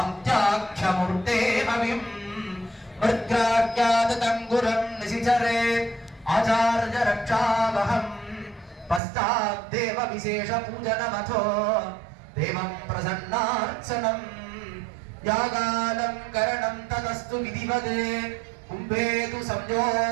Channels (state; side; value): drops out; left; at 9.0 s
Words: भविं मृत्याख्यातंगुरं निशिचरेत् आचार्य रक्षावहं पश्चाद्देव विशेष पूजनमथो देवं प्रसन्नार्चनं यागालङ्करणं तदस्तु विधिवदे कुम्भेतु